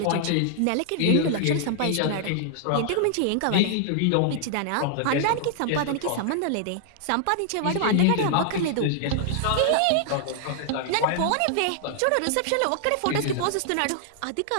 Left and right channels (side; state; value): both; different; correlation -0.01